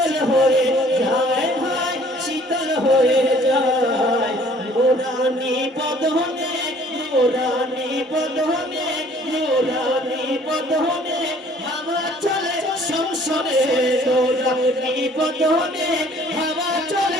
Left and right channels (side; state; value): both; normal; correlation 0.56